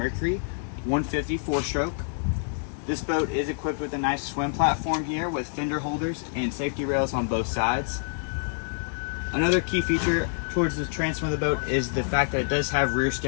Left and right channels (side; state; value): right; silent; digital silence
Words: 150 4-stroke. This boat is equipped with a nice swim platform here with fender holders and safety rails on both sides. Another key feature towards the transom of the boat is the fact that it does have rear